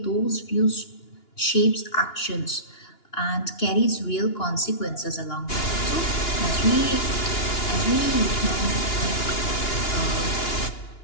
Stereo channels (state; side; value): late; right; 2.9 ms